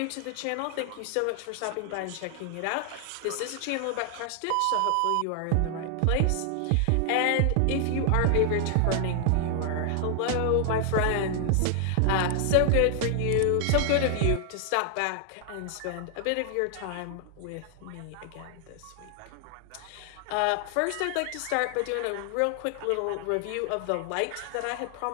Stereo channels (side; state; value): both; different; correlation 0.00